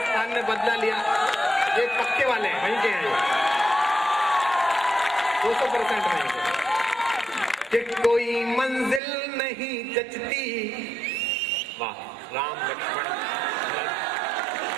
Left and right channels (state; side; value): drops out; left; at 9.0 s